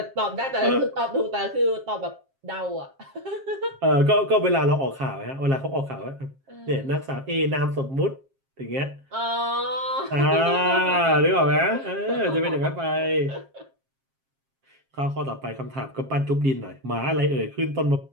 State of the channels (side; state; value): left; late; 7.4 ms